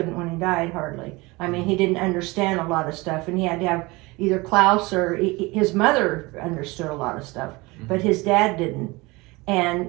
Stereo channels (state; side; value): quieter; left; 23.5 dB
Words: when he died, hardly. I mean, he didn't understand a lot of stuff, and he had to have either Klaus or his mother understood a lot of stuff, but his dad didn't. And